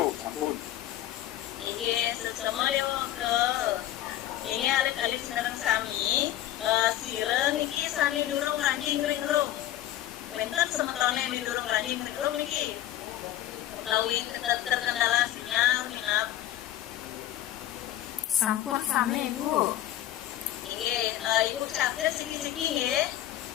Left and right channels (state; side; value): quieter; right; 13.2 dB